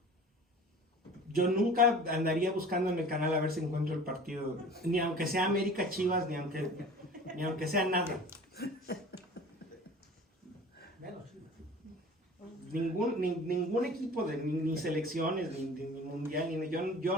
Yo nunca andaría buscando en el canal a ver si encuentro el partido, ni aunque sea América Chivas, ni aunque sea nada. Ningún equipo, ni selecciones, ni mundial, yo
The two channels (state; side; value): normal; both; correlation 0.42